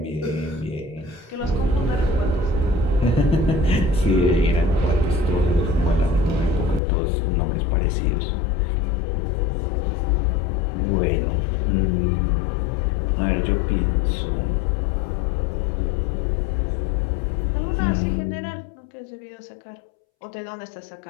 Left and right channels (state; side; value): drops out; right; at 6.8 s